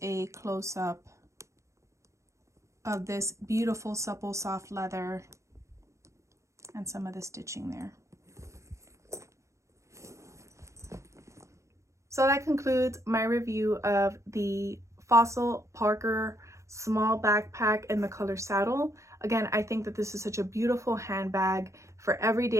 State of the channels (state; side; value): late; left; 0.14 ms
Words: a close-up of this beautiful, supple, soft leather and some of the stitching there. So that concludes my review of the Fossil Parker small backpack in the color saddle. Again, I think that this is such a beautiful handbag for every